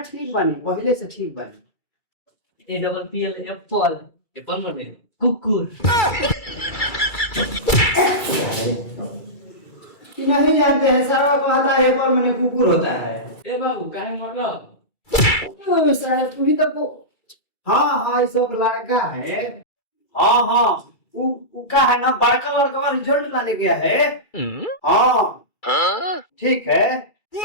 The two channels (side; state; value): right; late; 2.3 ms